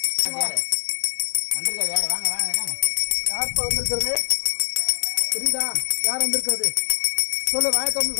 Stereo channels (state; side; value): silent; right; digital silence